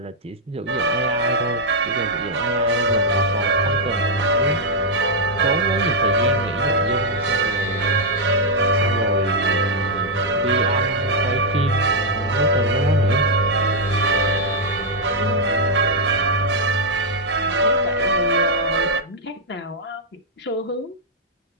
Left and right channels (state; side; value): normal; both; correlation -0.03